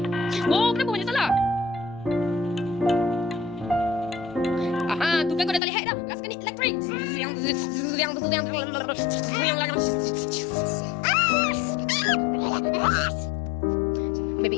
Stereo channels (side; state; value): right; drops out; at 5.6 s